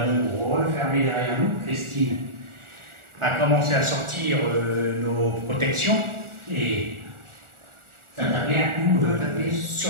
refermée derrière nous. Christine a commencé à sortir nos protections et ça tapait un coup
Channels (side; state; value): left; late; 1.4 ms